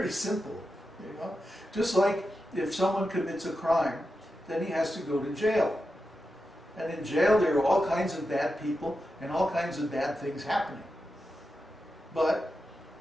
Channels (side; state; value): both; normal; correlation 0.89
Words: simple. Just like if someone commits a crime, then he has to go to jail. And in jail there are all kinds of bad people and all kinds of bad things happening. But